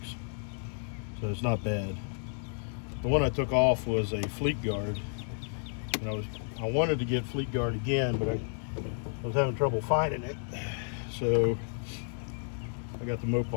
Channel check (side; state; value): right; silent; 56 dB below the other